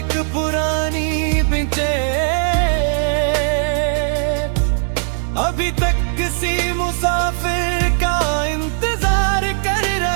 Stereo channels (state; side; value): silent; left; digital silence